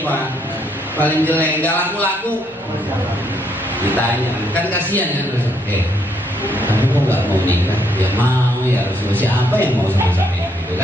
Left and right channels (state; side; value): normal; both; correlation 0.72